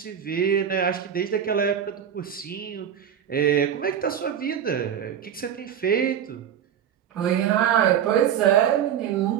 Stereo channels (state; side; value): quieter; left; 9.0 dB